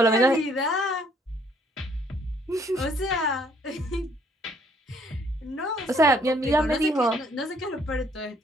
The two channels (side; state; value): both; normal; correlation 0.64